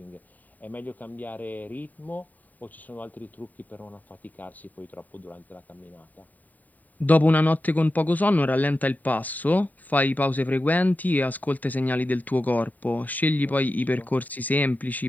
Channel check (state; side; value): late; right; 0.080 ms